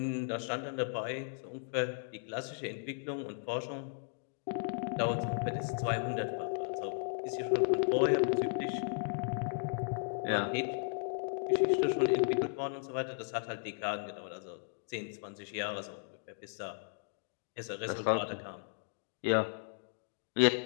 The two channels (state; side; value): silent; right; digital silence